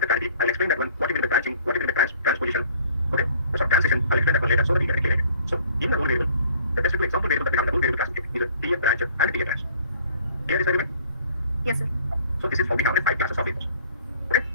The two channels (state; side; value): inverted; both; correlation -0.54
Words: the clarity. I'll explain that one. What you mean by branching, what you mean by transposition. Okay, so transition, I'll explain that one later so that we get it clear. So in the rule variable, the best example variable that we have in the rule variable classification is a PA branch and PA branch. Clear this argument? Yes, sir. So this is how we have 5 classes of variables. Okay,